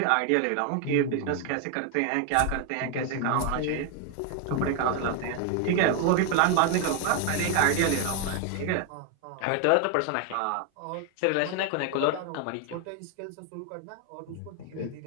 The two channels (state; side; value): different; both; correlation 0.00